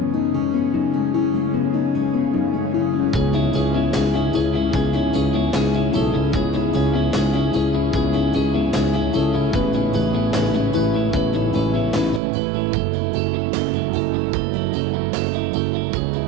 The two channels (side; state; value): left; drops out; at 12.2 s